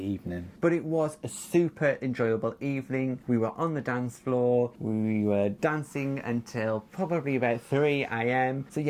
But it was a super enjoyable evening. We were on the dance floor. We were dancing until probably about 3 a.m. So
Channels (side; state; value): both; identical; correlation 1.00